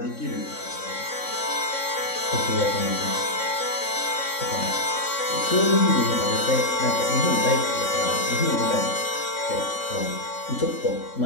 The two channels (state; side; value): late; right; 3.6 ms